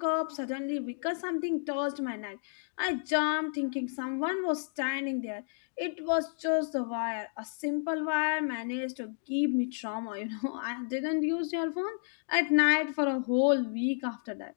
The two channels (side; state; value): right; silent; digital silence